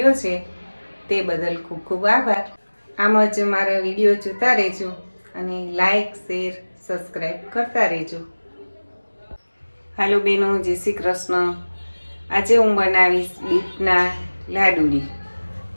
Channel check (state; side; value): inverted; both; correlation -1.00